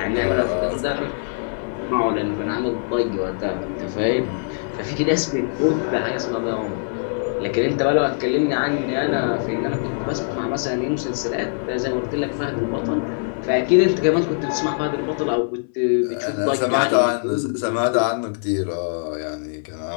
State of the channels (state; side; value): silent; right; digital silence